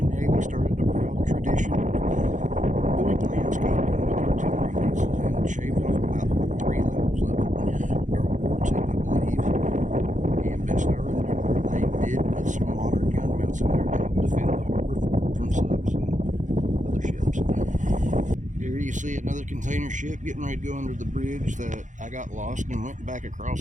Navy started a proud tradition of doing landscaping with artillery pieces and shaved off about 3 levels of it during World War II, I believe. And best I remember, they did put some modern gun mounts in there to help defend the harbor fort from subs and other ships. Here you see another container ship getting ready to go under the bridge that I got lost and went back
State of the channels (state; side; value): late; left; 0.36 ms